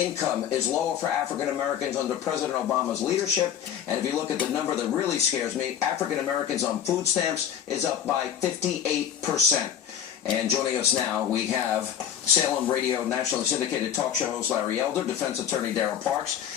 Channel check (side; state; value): right; quieter; 9.4 dB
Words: is lower for African Americans under President Obama's leadership. And if you look at the number that really scares me, African Americans on food stamps is up by 58%. And joining us now, we have Salem Radio nationally syndicated talk show host Larry Elder, defense attorney Darrell Parks.